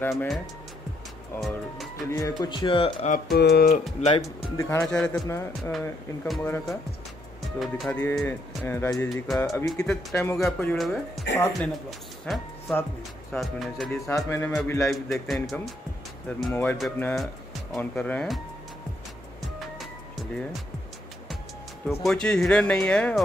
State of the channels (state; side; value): normal; both; correlation 0.73